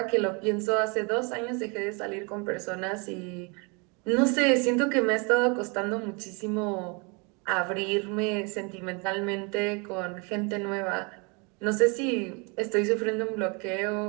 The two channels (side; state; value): left; quieter; 31.8 dB